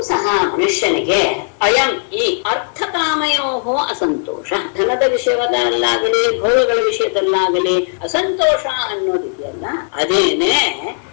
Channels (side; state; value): right; silent; 61 dB below the other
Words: ಮನುಷ್ಯನಿಗೆ ಅಯಂ ಈ ಅರ್ಥಕಾಮಯೋ ಅಸಂತೋಷ, ಧನದ ವಿಷಯದಲ್ಲಾಗಲಿ ಭೋಗಗಳ ವಿಷಯದಲ್ಲಾಗಲಿ ಅಸಂತೋಷ ಅನ್ನೋದಿದೆಯಲ್ಲ, ಅದೇನೆ